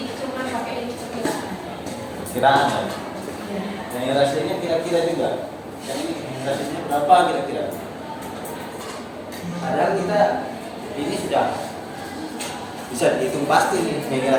perkiraan ya. Yang rasionya kira-kira juga. Yang ini rasionya berapa kira-kira? Padahal kita ini sudah bisa dihitung pasti nih. Yang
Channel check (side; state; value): both; identical; correlation 1.00